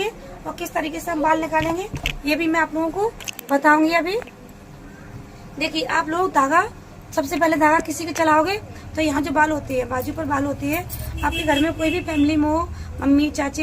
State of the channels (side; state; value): both; identical; correlation 1.00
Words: और किस तरीके से हम बाल निकालेंगे ये भी मैं आप लोगों को बताऊंगी अभी। देखिए आप लोग धागा, सबसे पहले धागा किसी के चलाओगे तो यहाँ जो बाल होते हैं, बाजू पर बाल होते हैं, आपके घर में कोई भी फैमिली में हो, मम्मी